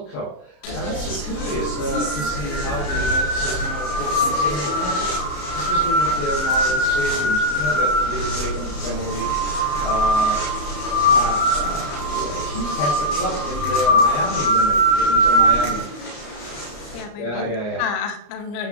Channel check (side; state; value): right; late; 34 ms